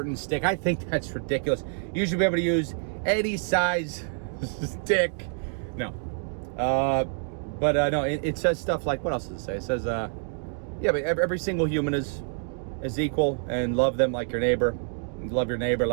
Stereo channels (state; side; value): silent; left; 55 dB below the other